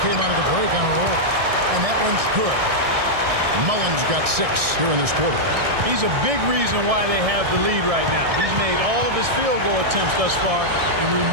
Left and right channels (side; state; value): left; late; 1.6 ms